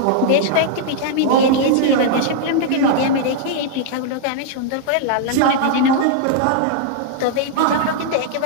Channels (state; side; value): different; both; correlation -0.01